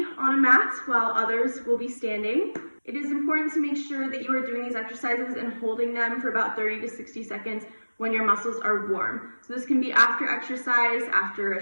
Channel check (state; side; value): inverted; both; correlation -1.00